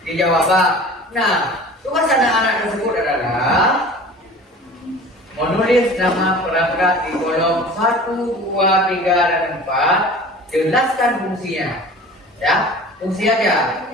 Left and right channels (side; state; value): both; normal; correlation 0.42